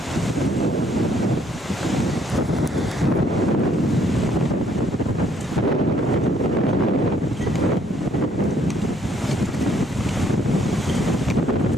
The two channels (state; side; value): normal; both; correlation 0.66